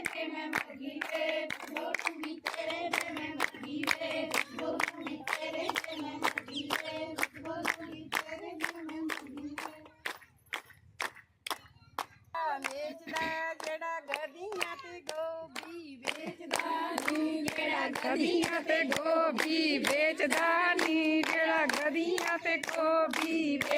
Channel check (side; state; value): both; identical; correlation 1.00